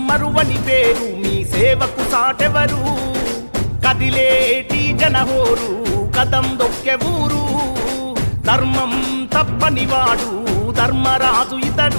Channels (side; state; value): both; inverted; correlation -1.00